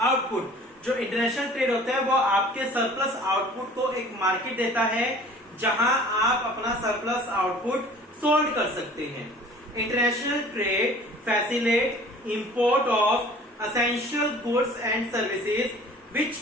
output. जो इंटरनेशनल ट्रेड होता है वो आपके सरप्लस आउटपुट को एक मार्केट देता है जहां आप अपना सरप्लस आउटपुट सोल्ड कर सकते हैं। International trade facilitate import of essential goods and services which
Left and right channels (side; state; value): both; normal; correlation 0.48